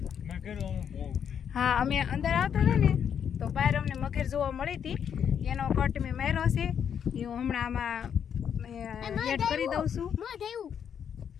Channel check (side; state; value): right; quieter; 8.1 dB